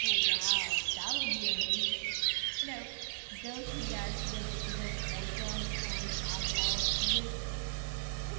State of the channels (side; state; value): left; silent; 54 dB below the other